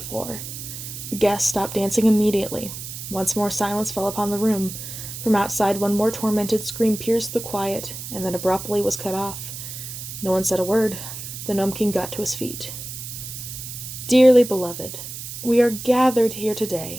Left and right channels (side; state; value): right; noise; hiss, 9 dB below the sound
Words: The guests stopped dancing immediately. Once more silence fell upon the room. From outside, one more tormented scream pierced the quiet, and then abruptly was cut off. No one said a word. The Gnome King got to his feet. Dearly beloved, we are gathered here